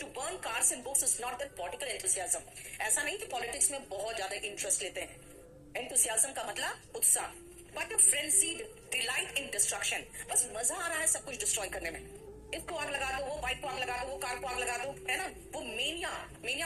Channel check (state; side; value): identical; both; correlation 1.00